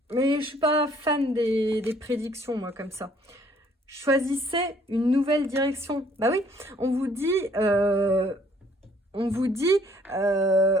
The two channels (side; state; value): both; normal; correlation 0.61